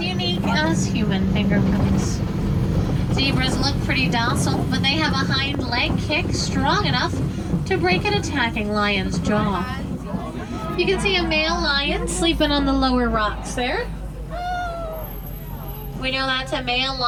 unique as human fingerprints. Zebras look pretty docile, but they have a hind leg kick strong enough to break an attacking lion's jaw. You can see a male lion sleeping on the lower rocks there. We know that's a male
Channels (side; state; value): both; identical; correlation 1.00